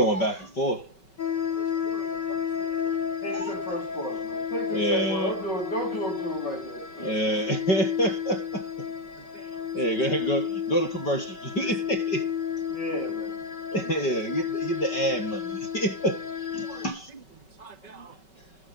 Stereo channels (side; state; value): right; late; 5.3 ms